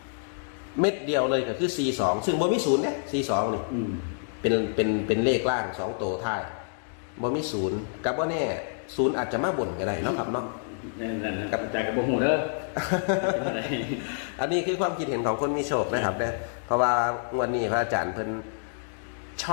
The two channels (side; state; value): right; silent; digital silence